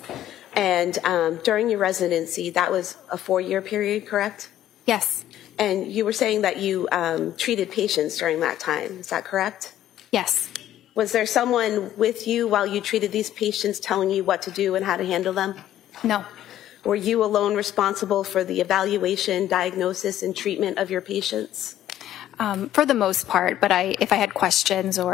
And during your residency, that was a 4-year period, correct? Yes. And you were saying that you treated patients during that time. Is that correct? Yes. Was there someone with you while you treated these patients telling you what to do and how to handle them? No. Were you alone responsible for the evaluation, diagnosis, and treatment of your patients? For the most part, but if I had questions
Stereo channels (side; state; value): right; quieter; 12.2 dB